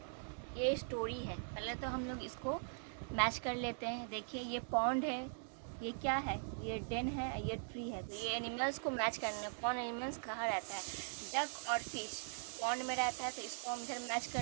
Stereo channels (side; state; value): left; silent; digital silence